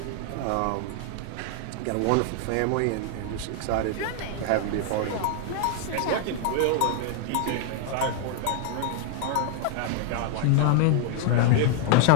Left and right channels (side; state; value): both; different; correlation 0.00